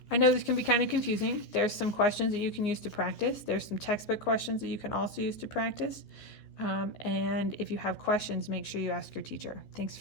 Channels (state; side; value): late; right; 14 ms